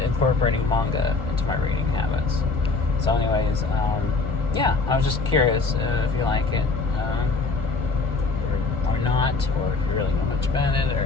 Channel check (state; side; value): quieter; right; 4.0 dB